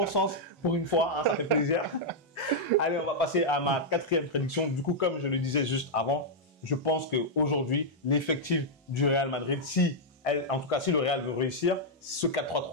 sens pour une fois, ça fait plaisir. Allez, on va passer à ma quatrième prédiction. Du coup, comme je le disais juste avant, je pense qu'aujourd'hui, l'effectif du Real Madrid, en tout cas si le Real veut réussir, ce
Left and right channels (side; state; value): both; normal; correlation -0.05